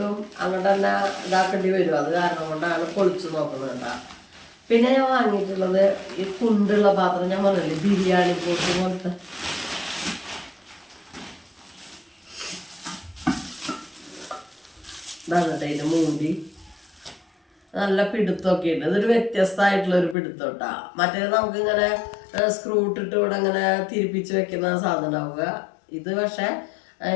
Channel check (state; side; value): drops out; right; at 20.2 s